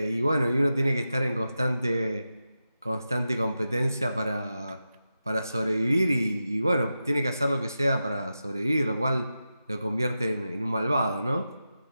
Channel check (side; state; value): both; inverted; correlation -0.91